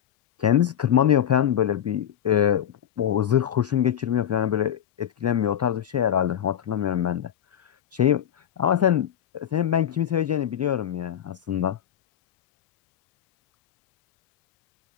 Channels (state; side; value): quieter; right; 9.7 dB